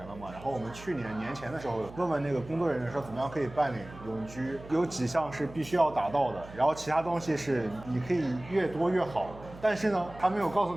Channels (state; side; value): noise; right; hum, 17 dB below the sound